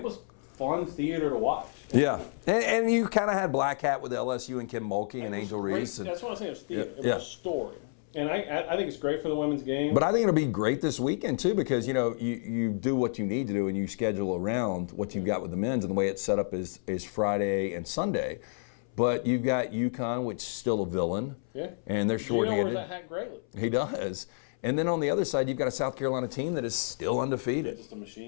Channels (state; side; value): silent; right; 58 dB below the other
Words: was fun theater to watch. And you kind of had Black Hat with LSU and Kim Mulkey. It was great. That's what I say. It was theater. It was a story. And I think it's great for the women's game. But I think it'll be great this weekend too because you do what you need to do and you schedule around what you've got with the men's, and the way it's set up is Friday and Sunday. But you've got UConn, which is still a villain. Yeah. And they're Gino wears that hat greatly. He does. And then on the other side, you've got a South Carolina team that is still undefeated. They're just a